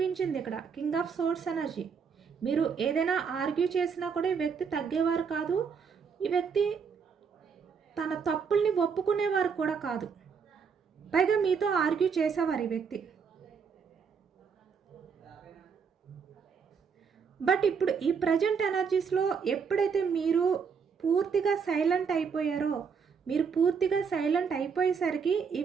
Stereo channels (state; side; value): quieter; left; 6.1 dB